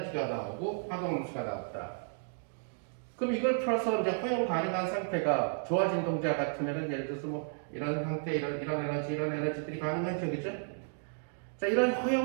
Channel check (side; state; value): left; silent; digital silence